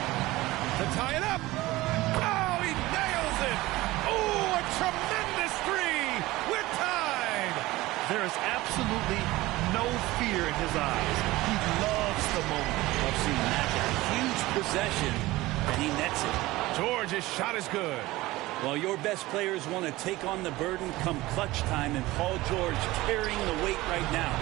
To tie it up. Oh, he nails it. Oh, a tremendous 3. We're tied. There is absolutely no fear in his eyes. He loves the moment. I've seen that. A huge possession, and he nets it. George's shot is good. Well, your best players want to take on the burden come clutch time, and Paul George carrying the weight right now.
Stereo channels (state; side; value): quieter; left; 18.8 dB